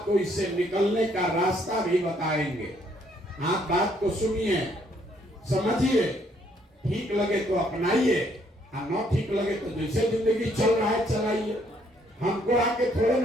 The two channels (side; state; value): both; normal; correlation 0.68